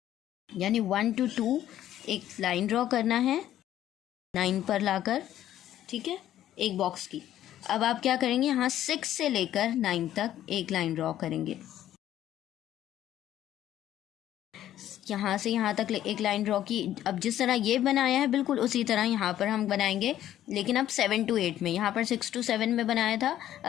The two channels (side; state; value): right; quieter; 12.2 dB